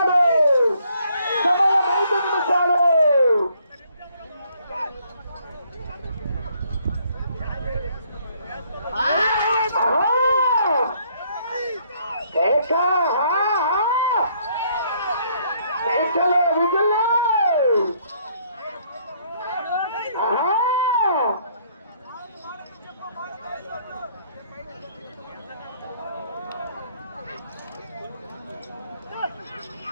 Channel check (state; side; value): inverted; both; correlation -0.66